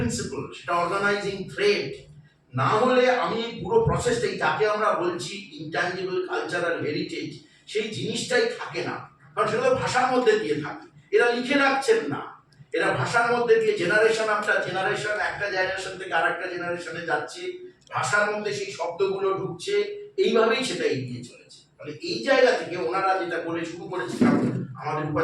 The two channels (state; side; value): identical; both; correlation 1.00